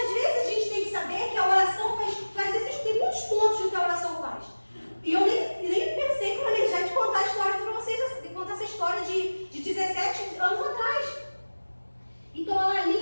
vezes a gente tem que saber que a oração faz tem muitos pontos do que a oração faz. E eu nem pensei que eu ia já te contar a história para vocês, de contar essa história de 17 anos atrás. Então ela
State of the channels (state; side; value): inverted; both; correlation -1.00